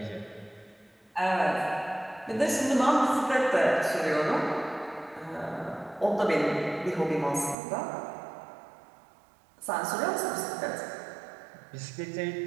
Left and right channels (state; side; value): drops out; left; at 7.6 s